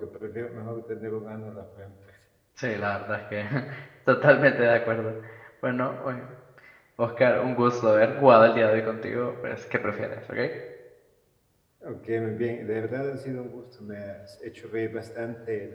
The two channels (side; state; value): both; identical; correlation 1.00